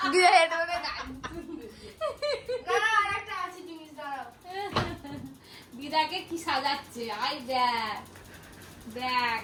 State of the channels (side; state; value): both; identical; correlation 1.00